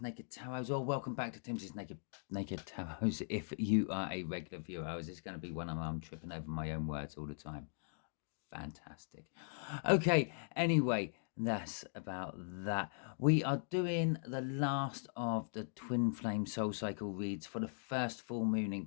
Naked Tarots, or welcome back to Timsy's Naked Tarots if you are a regular viewer. I was just going to be one of them. I'm tripping over my own words all the time. Fantastic. Okay, anyway, that's about that. We are doing the last of the Twin Flame Soul Cycle reads for the first full moon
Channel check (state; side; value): silent; right; digital silence